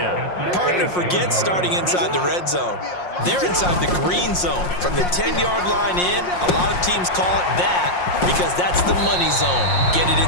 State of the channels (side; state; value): right; late; 5.6 ms